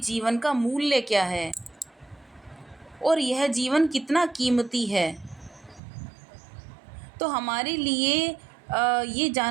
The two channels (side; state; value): left; drops out; at 5.8 s